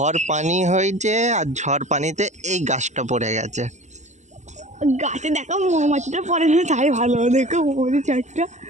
পানি হয়েছে আর ঝড় পানিতে এই গাছটা পড়ে গেছে। গাছে দেখো মৌমাছিটা পড়ে না, তাই ভালো। দেখো মৌমাছি চারটা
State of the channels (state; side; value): late; left; 0.34 ms